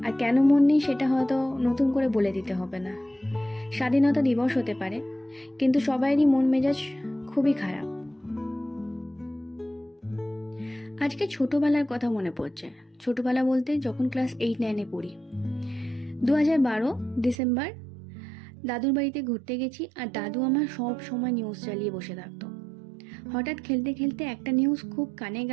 আর কেন মন নেই সেটা হয়তো নতুন করে বলে দিতে হবে না। স্বাধীনতা দিবস হতে পারে, কিন্তু সবাইরই মন মেজাজ খুবই খারাপ। আজকে ছোটোবেলার কথা মনে পড়ছে। ছোটোবেলা বলতে যখন ক্লাস 8-9-এ পড়ি। 2012 ডিসেম্বর দাদুর বাড়িতে ঘুরতে গেছি, আর দাদু আমার সব সময় নিউজ চালিয়ে বসে থাকতো। হঠাৎ খেলতে খেলতে একটা নিউজ খুব কানে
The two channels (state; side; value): drops out; left; at 17.4 s